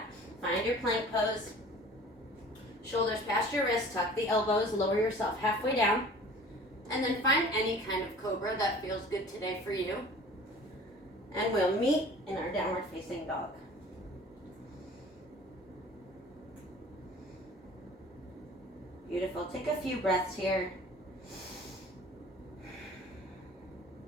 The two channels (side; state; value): both; normal; correlation 0.46